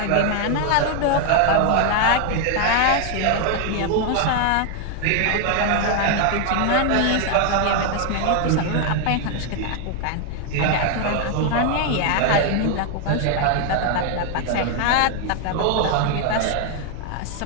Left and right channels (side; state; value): both; different; correlation 0.00